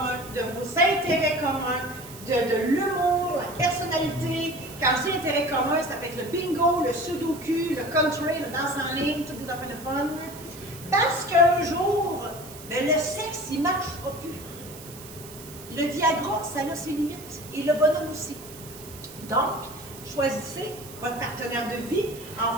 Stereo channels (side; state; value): right; noise; hiss, 16 dB below the sound